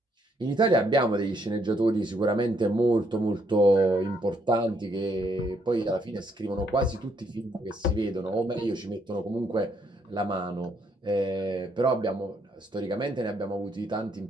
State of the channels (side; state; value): both; normal; correlation 0.72